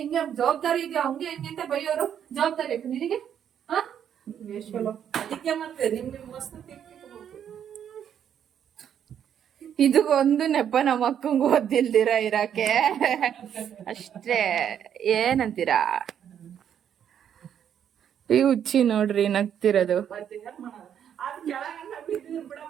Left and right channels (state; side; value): quieter; left; 9.1 dB